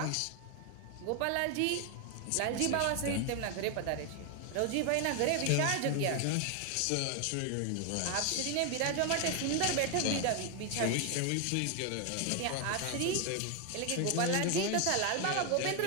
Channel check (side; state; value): both; different; correlation 0.01